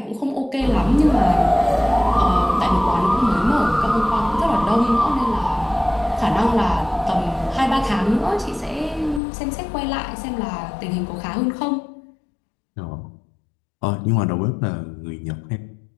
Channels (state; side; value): drops out; right; at 9.2 s